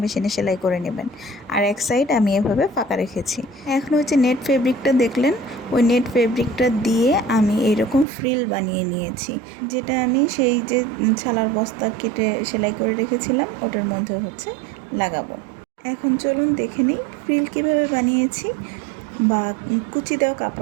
মেশিনে সেলাই করে নেবেন। আর 1 সাইড আমি এভাবে ফাঁকা রেখেছি। এখন হচ্ছে নেট ফেব্রিকটা দেখলেন, ওই নেট ফেব্রিকটা দিয়ে আমি এইরকম ফ্রিল বানিয়ে নিয়েছি, যেটা আমি সেই যে ছালার বস্তা কেটে সেলাই করে রেখেছিলাম ওটার মধ্যে হচ্ছে লাগাবো। এখন চলুন দেখে নিই ফ্রিল কীভাবে বানিয়েছি বা কুচি দেওয়া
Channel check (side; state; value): left; drops out; at 8.1 s